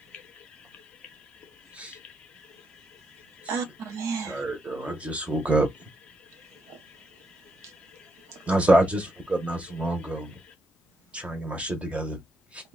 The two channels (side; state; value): both; normal; correlation 0.80